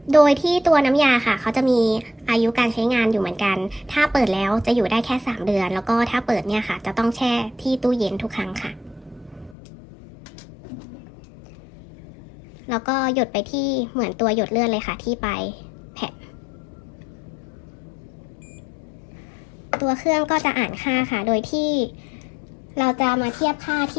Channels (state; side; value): drops out; right; at 9.6 s